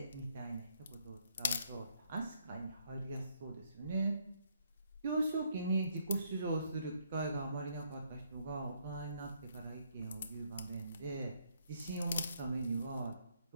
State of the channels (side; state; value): both; inverted; correlation -0.71